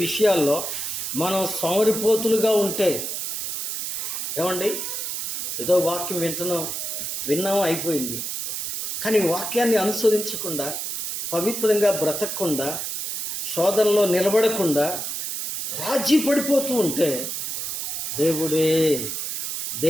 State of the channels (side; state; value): right; noise; hiss, 3 dB below the sound